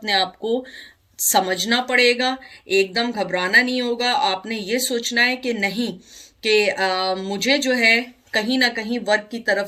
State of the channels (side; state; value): both; identical; correlation 1.00